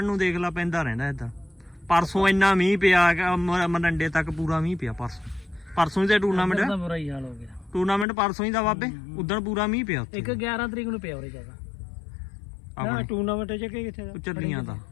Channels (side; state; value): right; drops out; at 8.1 s